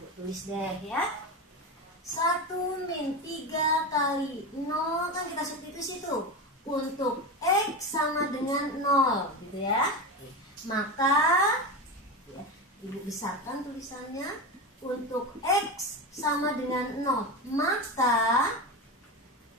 tulis deh ya. 1 min 3 kali 0, kan kita substitusi tuh. Untuk X sama dengan 0 gitu ya. Maka ya, Ibu besarkan tulisannya. Untuk X sama dengan 0, maka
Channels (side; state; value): both; normal; correlation 0.20